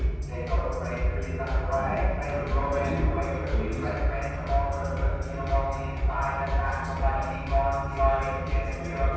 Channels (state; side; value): identical; both; correlation 1.00